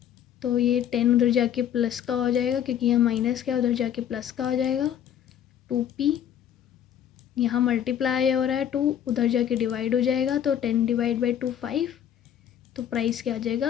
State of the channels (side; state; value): right; quieter; 9.7 dB